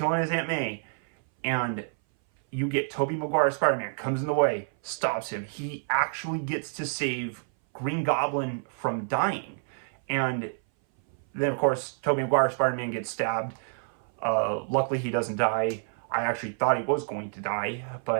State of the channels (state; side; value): silent; left; 58 dB below the other